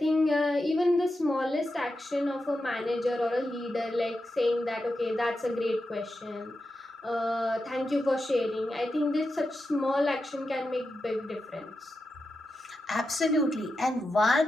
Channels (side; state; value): both; normal; correlation 0.89